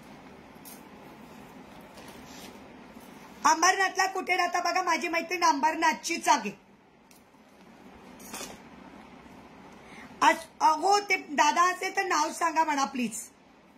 अंबरनाथला कुठे राहता बघा, माझी मैत्रीण अंबरनाथचीच आहे. हो, ते दादा असेल तर नाव सांगा म्हणा प्लीज.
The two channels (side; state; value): both; identical; correlation 1.00